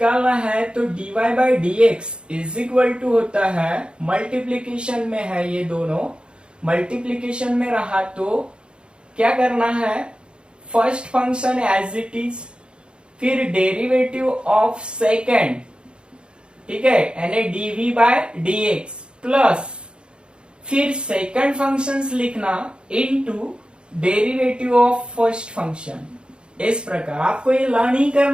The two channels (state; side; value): late; left; 0.053 ms